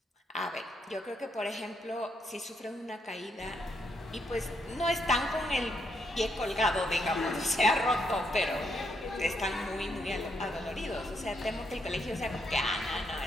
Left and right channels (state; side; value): normal; both; correlation 0.76